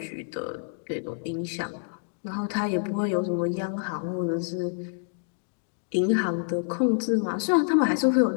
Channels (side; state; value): right; silent; digital silence